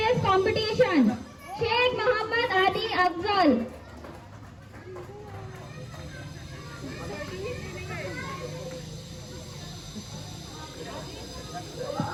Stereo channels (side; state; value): both; identical; correlation 1.00